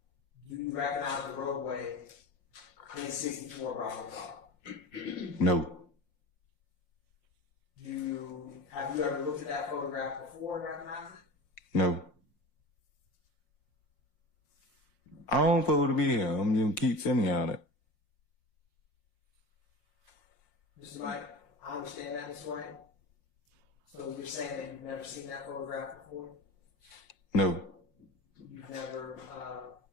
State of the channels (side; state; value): right; late; 5.6 ms